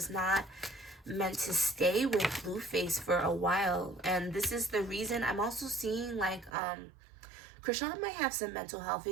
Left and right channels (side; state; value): left; drops out; at 6.5 s